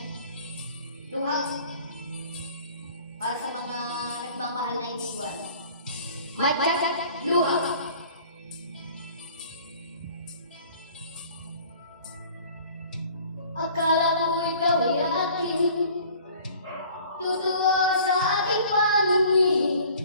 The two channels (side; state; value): both; inverted; correlation -0.50